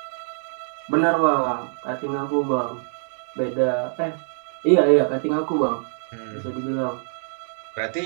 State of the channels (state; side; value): silent; left; digital silence